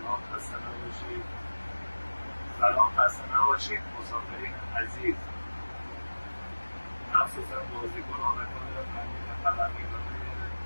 خسته نباشید. سلام، خسته نباشید مسافرین عزیز. مخصوصا بازیکنان و خبرنگاران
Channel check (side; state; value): both; inverted; correlation -1.00